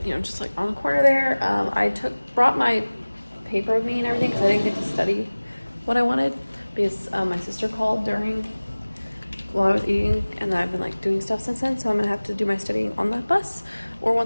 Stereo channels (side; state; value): both; inverted; correlation -1.00